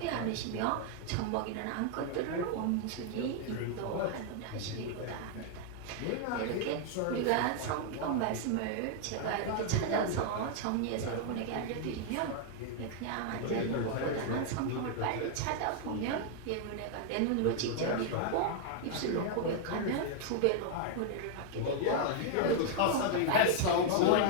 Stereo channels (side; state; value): both; different; correlation 0.00